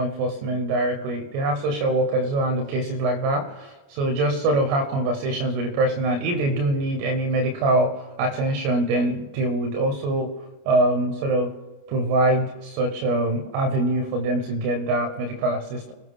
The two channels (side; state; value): left; late; 29 ms